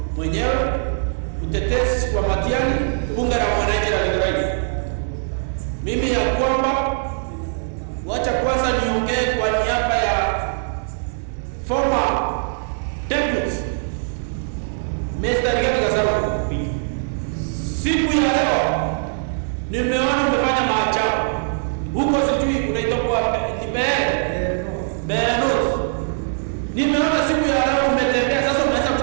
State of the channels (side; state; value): left; silent; digital silence